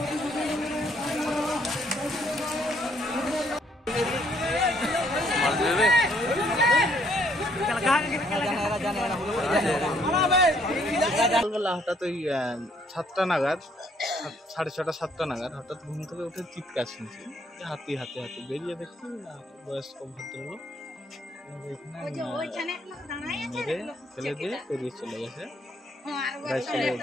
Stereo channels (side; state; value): both; normal; correlation 0.66